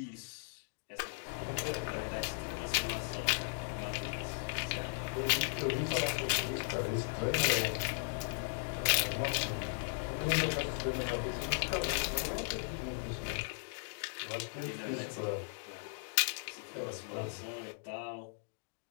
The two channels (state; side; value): silent; right; digital silence